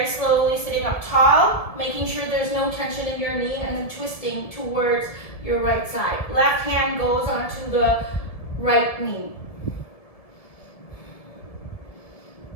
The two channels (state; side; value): late; right; 1.7 ms